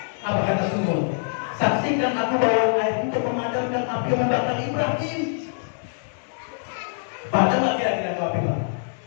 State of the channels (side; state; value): right; silent; digital silence